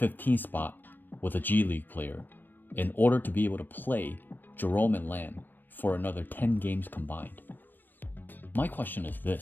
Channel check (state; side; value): late; right; 0.092 ms